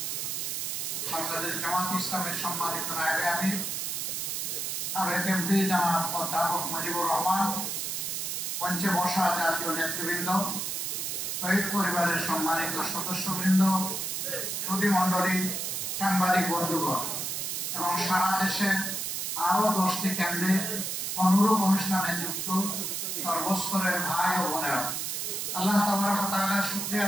বাংলাদেশ জামাত ইসলামের সম্মানিত নায়েবে আমির সাবেক এমপি জনাব অধ্যাপক মুজিবুর রহমান, মঞ্চে বসা জাতীয় নেতৃবৃন্দ, শহীদ পরিবারের সম্মানিত সদস্যবৃন্দ, সুধীমণ্ডলী, সাংবাদিক বন্ধুগণ এবং সারা দেশে আরো 10টি কেন্দ্রে অনুরূপ অনুষ্ঠানে যুক্ত সর্বস্তরের ভাই ও বোনেরা, আল্লাহ তাবারক ওয়া তাআলার শুকরিয়া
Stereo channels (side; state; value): right; noise; hiss, 2 dB below the sound